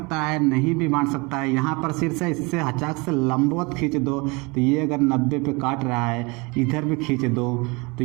है, नहीं भी बांट सकता है। यहाँ पर शीर्ष है, इससे हचाक से लंबवत खींच दो तो ये अगर 90 पे काट रहा है, इधर भी खींच दो तो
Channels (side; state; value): left; quieter; 27.3 dB